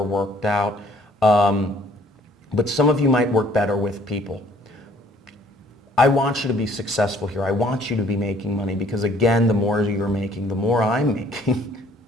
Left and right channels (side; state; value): both; normal; correlation 0.59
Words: worked out. But some of you might work better with people. I want you to be successful here. I want you to be making money because, again, the more you're making, the more I'm making.